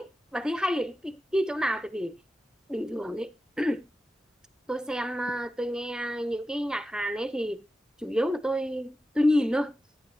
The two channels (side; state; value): both; normal; correlation 0.93